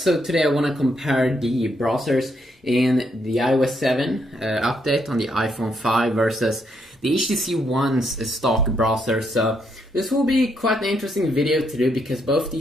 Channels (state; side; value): normal; both; correlation 0.76